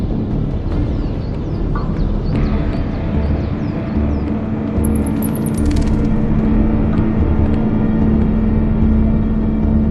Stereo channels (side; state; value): both; identical; correlation 1.00